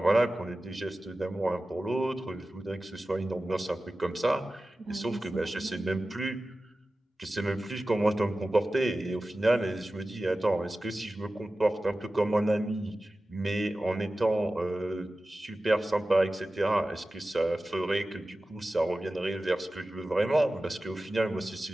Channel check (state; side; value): normal; both; correlation 0.95